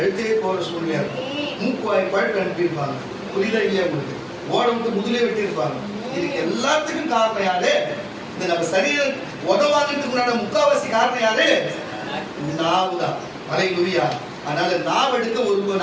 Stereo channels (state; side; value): identical; both; correlation 1.00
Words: போகிற சூழ்நிலையா இருக்கும். மூக்குவாய் பழுப்பு அனுப்பியிருப்பாங்க. புரியுதா இல்லையா உங்களுக்கு? ஓட விட்டு முதுலே வெட்டி இருப்பாங்க. இதுக்கு எல்லாத்துக்கும் காரணம் யாரு? இந்த நம்ம சரீரம் உதவாங்கிறதுக்கு முன்னாடி முக்காவாசி காரணம் யாரு? நாவு தான். அல்லேலூயா. அதனால நாவ எடுக்க ஒரு